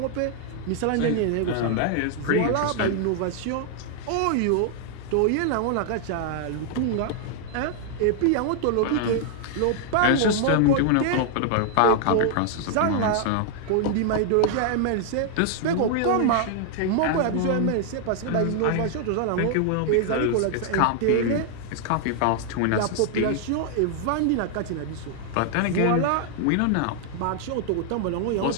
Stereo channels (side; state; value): both; different; correlation 0.00